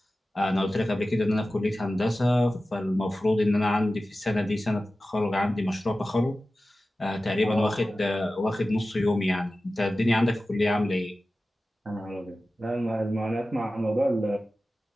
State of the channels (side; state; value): both; normal; correlation 0.95